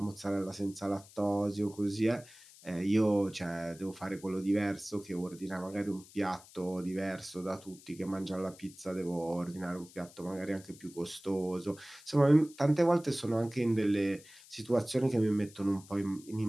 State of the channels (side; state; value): left; noise; hiss, 22 dB below the sound